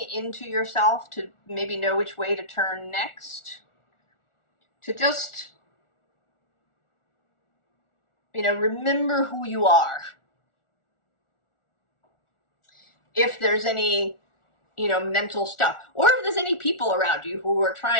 into yourself to maybe know which way to turn next, to just, remember who you are. If there's any, mental stuff, or if there's any people around you who are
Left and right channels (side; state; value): right; late; 1.4 ms